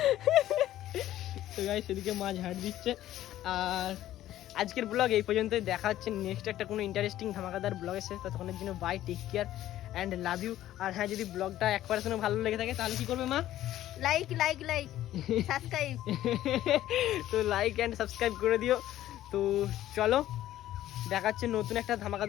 তো গাইস সেদিকে মা ঝাড় দিচ্ছে। আর আজকের ব্লগ এই পর্যন্তই, দেখা হচ্ছে নেক্সট একটা কোনো ইন্টারেস্টিং ধামাকাদার ব্লগের সাথে। ততক্ষণের জন্য bye, take care and love you. আর হ্যাঁ, যদি ব্লগটা 1% ভালো লেগে থাকে তাহলে কি করবে মা? Like like like subscribe. তো লাইক অ্যান্ড সাবস্ক্রাইব করে দিও। তো চলো, দেখা হচ্ছে নতুন একটা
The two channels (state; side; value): quieter; right; 13.4 dB